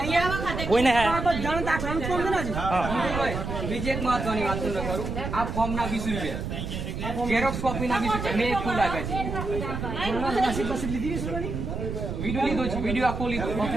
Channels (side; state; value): right; noise; rumble, 4 dB below the sound